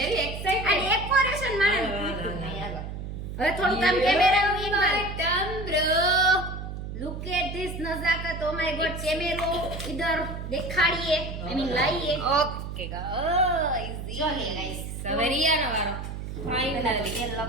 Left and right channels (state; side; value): noise; right; hum, 7 dB below the sound